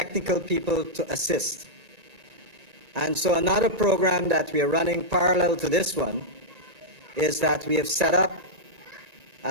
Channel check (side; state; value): left; late; 1.9 ms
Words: people to assist. And so another program that we are running parallel to this one is that we have set up